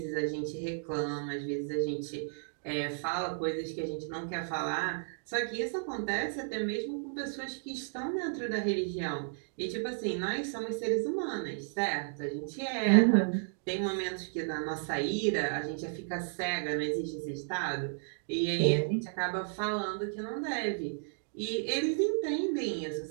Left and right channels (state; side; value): silent; left; digital silence